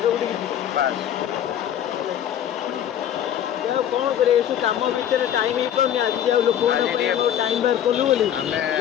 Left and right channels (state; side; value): quieter; right; 10.3 dB